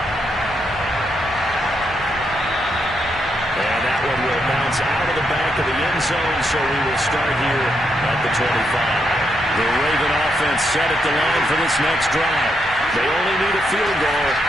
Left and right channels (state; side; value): normal; both; correlation 0.80